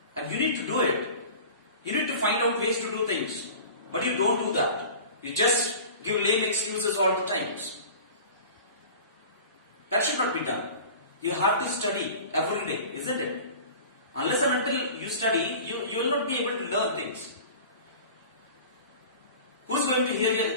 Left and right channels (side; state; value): both; inverted; correlation -0.39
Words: and you need to do it. You need to find out ways to do things, but you don't do that. You just give lame excuses all the times. That should not be done. You have to study every day, isn't it? Unless and until you study, you will not be able to learn things. Who's going to hear